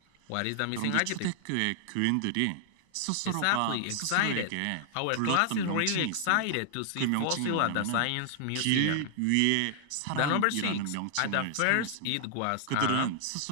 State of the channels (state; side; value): different; both; correlation -0.01